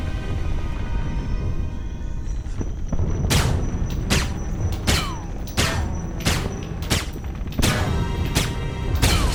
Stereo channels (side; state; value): both; identical; correlation 1.00